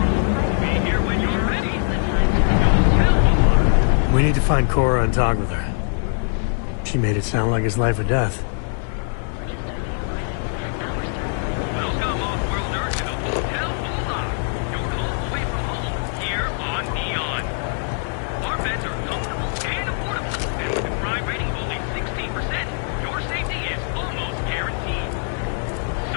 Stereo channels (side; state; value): right; silent; digital silence